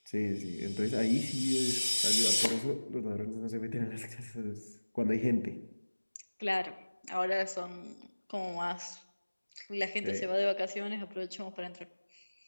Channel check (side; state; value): both; inverted; correlation -1.00